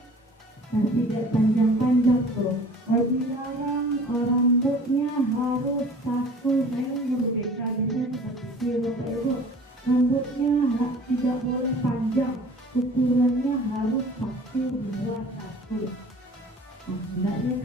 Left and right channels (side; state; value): both; normal; correlation 0.46